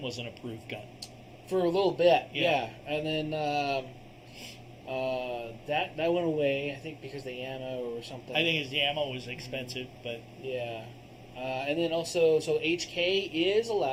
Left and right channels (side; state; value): both; identical; correlation 1.00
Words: was an approved gun for a little bit. Yeah. And then that went away. I think because the ammo or something. I think the ammo was expensive, but yeah. And then also, so HK is